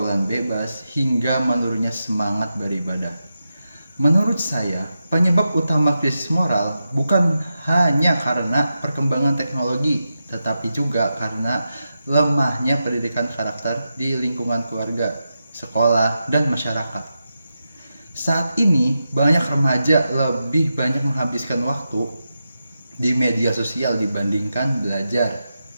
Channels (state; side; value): inverted; both; correlation -0.89